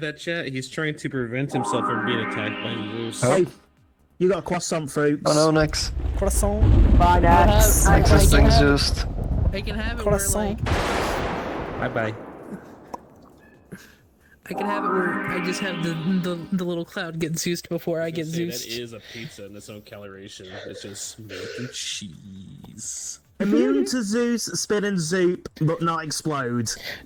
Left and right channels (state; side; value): identical; both; correlation 1.00